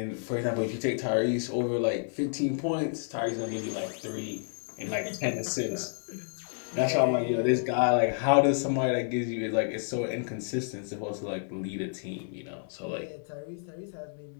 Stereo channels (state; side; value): silent; right; 58 dB below the other